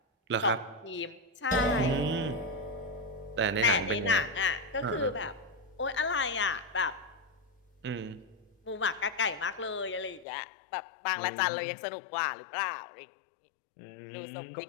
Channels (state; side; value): drops out; right; at 10.2 s